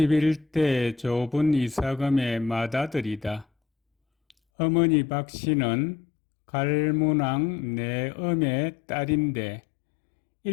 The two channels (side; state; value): right; drops out; at 4.4 s